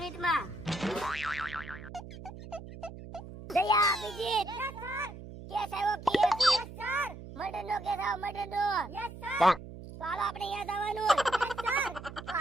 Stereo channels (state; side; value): noise; right; hum, 13 dB below the sound